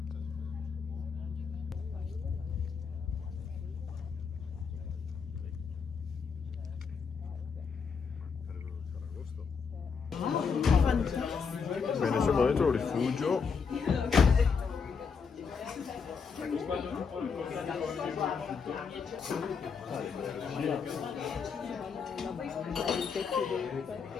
Bene, siamo dentro il rifugio.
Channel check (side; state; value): right; quieter; 5.7 dB